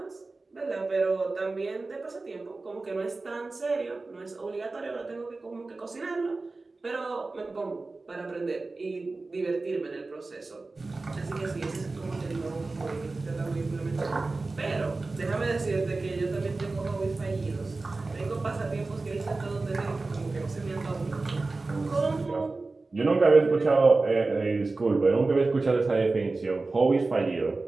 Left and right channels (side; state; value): left; quieter; 3.5 dB